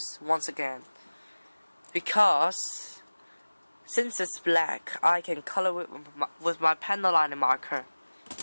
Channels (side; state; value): both; inverted; correlation -1.00